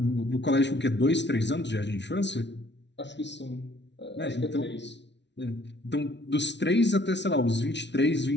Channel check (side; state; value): right; late; 0.51 ms